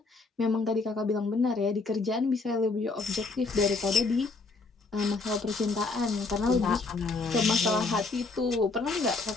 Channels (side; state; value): right; quieter; 3.8 dB